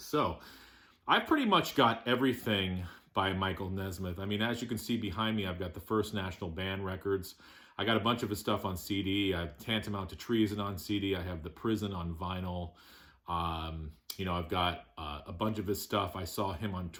So I've pretty much got everything by Michael Nesmith. I mean, as you can see behind me, I've got the First National Band records. I got a bunch of his stuff on CD. I have Tantamount to Treason on CD. I have The Prison on vinyl. I've got a bunch of his stuff. I saw him on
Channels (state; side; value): identical; both; correlation 1.00